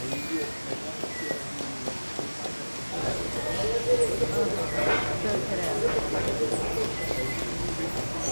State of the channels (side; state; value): both; inverted; correlation -1.00